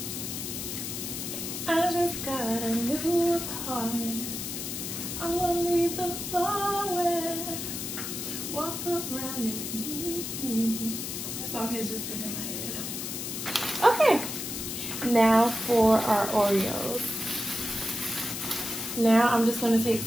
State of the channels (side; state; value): left; noise; hiss, 5 dB below the sound